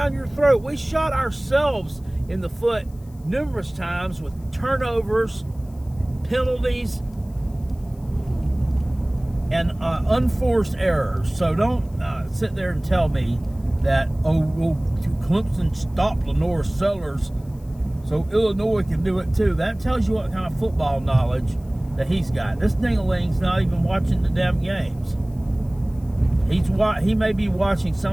your throat. We shot ourselves in the foot numerous times with turnovers, penalties, and unforced errors. So don't sit there and tell me that, Clemson stopped Lenora Sellers, so Illinois can do it too. That tells you what kind of football knowledge that he's got. This ding-a-ling's not even watching the damn games. He may be watching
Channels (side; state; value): left; noise; hiss, 29 dB below the sound